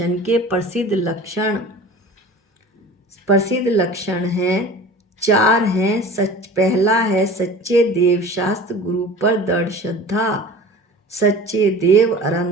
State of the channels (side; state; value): both; normal; correlation 0.39